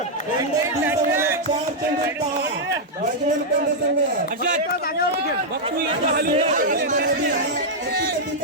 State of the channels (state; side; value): normal; both; correlation -0.05